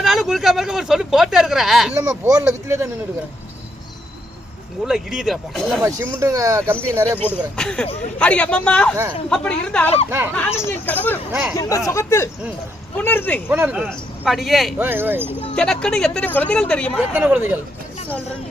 குறுக்காம இருக்க ஒரு சொல்லி போட்டே இருக்கிற. இல்லம்மா போர்ல வித்துல தான் நின்னுட்டு இருக்கேன். உள்ள இடியுதுடா. இல்லம்மா சிமெண்ட் கம்பி நிறைய போட்டுக்கறேன். அடி அம்மம்மா அப்படி இருந்தாலும் நானும் என் கணவரும் இந்த சுகத்தில் புணர்ந்து அடியே எனக்குன்னு எத்தனை குழந்தைகள் தெரியுமா? எத்தனை குழந்தைகள் சொல்றேன்.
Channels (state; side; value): normal; both; correlation 0.76